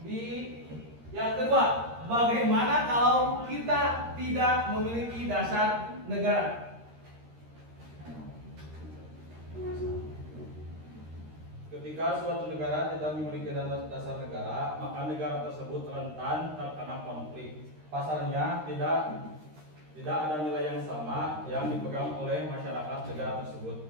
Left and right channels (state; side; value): late; left; 13 ms